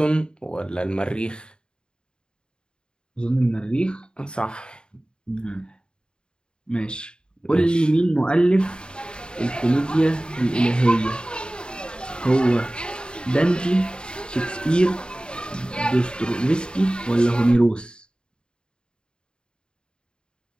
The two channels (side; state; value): right; late; 0.050 ms